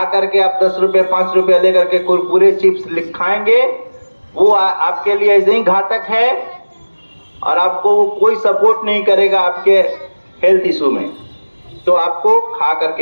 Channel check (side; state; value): both; inverted; correlation -1.00